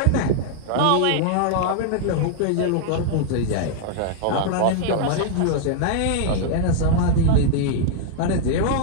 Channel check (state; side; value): different; both; correlation -0.01